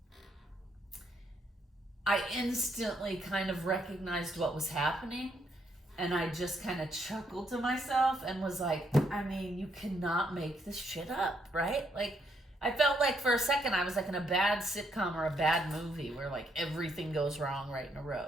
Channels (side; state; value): both; normal; correlation 0.74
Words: I instantly kind of recognized what was happening, and I just kind of chuckled to myself and was like, you cannot make this shit up, right? Like, I felt like for a second I was like in a bad sitcom or a bad movie where like everything goes wrong right in a